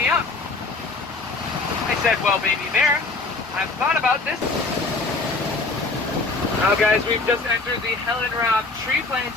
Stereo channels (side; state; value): right; quieter; 3.6 dB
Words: up." I said, "Well, baby bear, I've thought about this." Now guys, we've just entered the Helen Robb tree